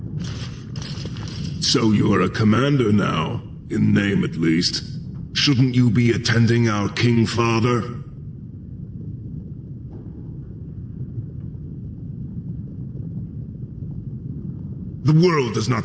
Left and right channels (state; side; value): identical; both; correlation 1.00